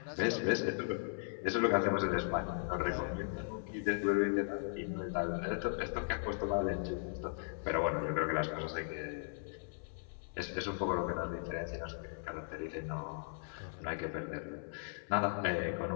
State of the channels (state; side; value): silent; right; 53 dB below the other